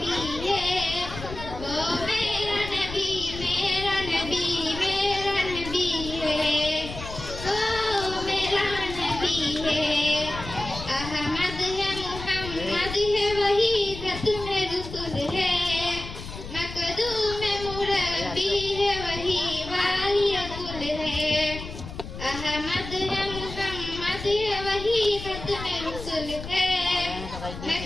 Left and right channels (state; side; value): noise; left; rumble, 10 dB below the sound